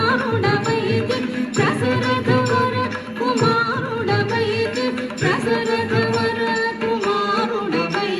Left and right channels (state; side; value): identical; both; correlation 1.00